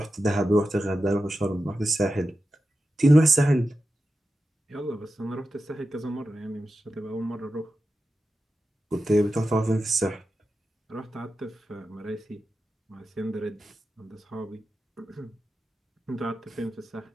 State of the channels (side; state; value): both; normal; correlation 0.91